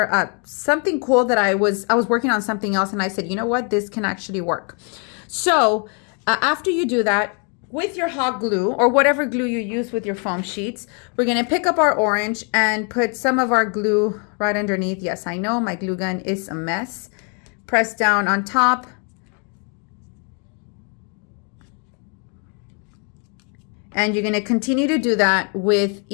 something cool that I was working on something else, and I said, you know what, this can actually work. So after you do that, with your hot glue or whatever glue you use with your foam sheets, we're going to pick up our orange and put some of our glue right underneath. Yes, I know my glue gun is a mess. Press down on top. And you're going to continue to do that with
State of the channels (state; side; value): quieter; right; 38.5 dB